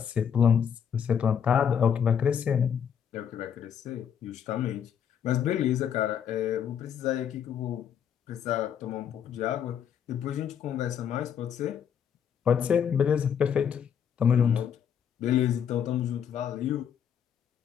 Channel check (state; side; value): quieter; right; 8.2 dB